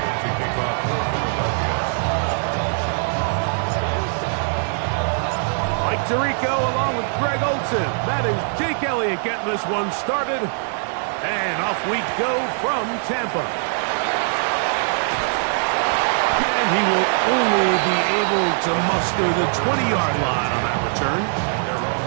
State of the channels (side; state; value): left; silent; 61 dB below the other